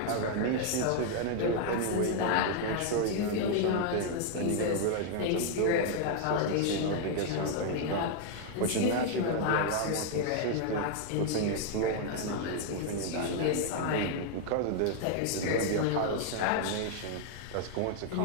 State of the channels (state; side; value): different; both; correlation 0.00